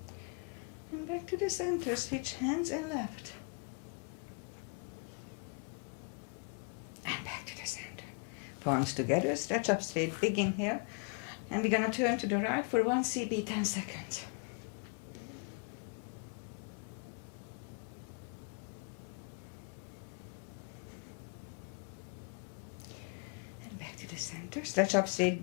And back to the center, switch hands and left. And back to the center. Palms together, stretch up straight, big inhale. And we're gonna turn to the right for 1 CB, 10 seconds. And back to the center, stretch up straight,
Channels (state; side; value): quieter; right; 36.2 dB